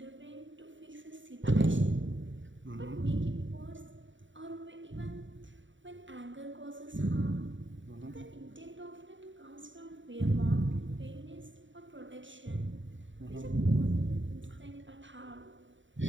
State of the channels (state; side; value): late; left; 0.55 ms